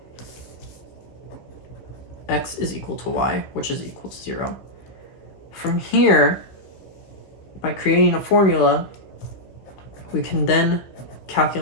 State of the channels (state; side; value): late; right; 15 ms